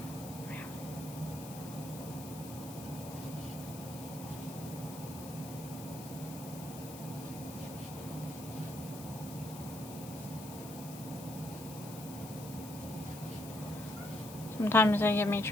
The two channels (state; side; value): noise; left; hiss, 14 dB below the sound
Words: Sometimes they give me